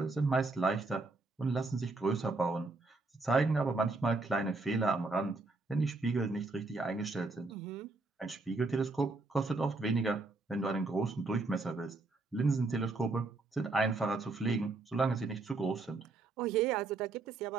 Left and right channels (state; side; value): quieter; left; 3.5 dB